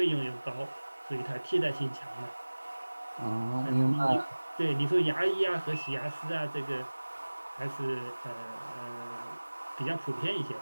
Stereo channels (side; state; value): both; inverted; correlation -1.00